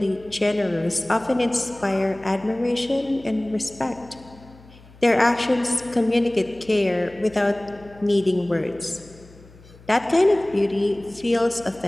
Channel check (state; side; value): noise; left; hum, 23 dB below the sound